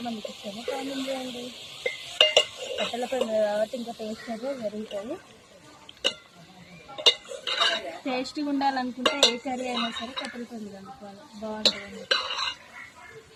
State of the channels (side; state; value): both; identical; correlation 1.00